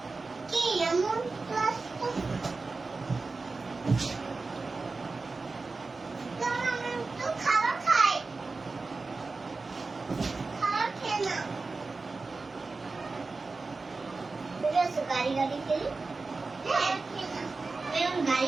কি এমন ক্লাস তো খাবার খাই খাবার খেয়ে না গাড়ি খেলি হ্যাঁ এরকম গাড়ি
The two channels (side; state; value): left; quieter; 3.9 dB